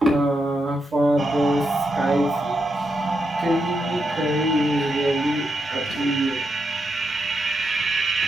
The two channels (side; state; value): both; normal; correlation 0.84